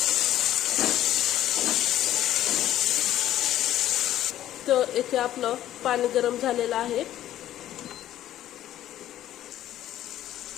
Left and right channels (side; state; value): right; quieter; 12.6 dB